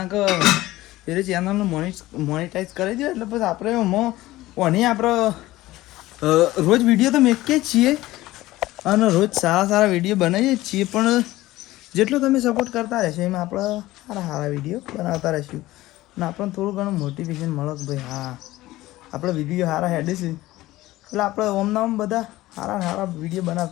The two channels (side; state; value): right; quieter; 17.2 dB